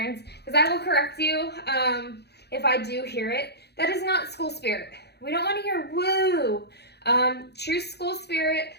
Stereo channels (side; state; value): right; late; 0.48 ms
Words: because I will correct you if I do hear it. That is not school spirit. We don't want to hear woo. True school spirit,